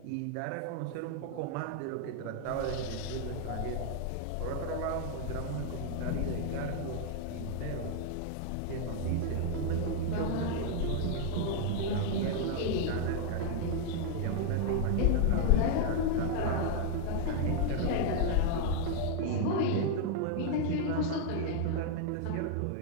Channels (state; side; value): different; both; correlation 0.00